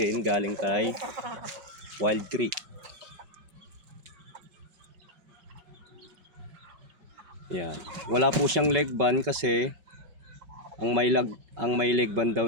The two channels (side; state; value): left; late; 5.3 ms